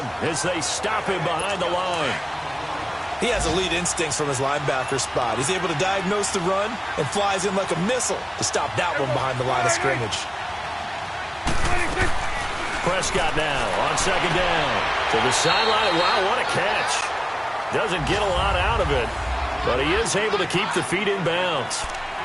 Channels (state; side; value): identical; both; correlation 1.00